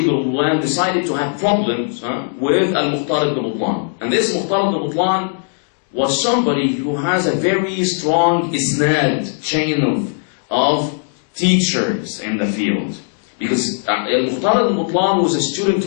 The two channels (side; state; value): right; silent; 59 dB below the other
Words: Butlan decided to have problems with Al-Mukhtar ibn Butlan. And this Mukhtar ibn Butlan was somebody who has a very strong isnad, chain of teachers in the field. Because Al-Mukhtar ibn Butlan was a student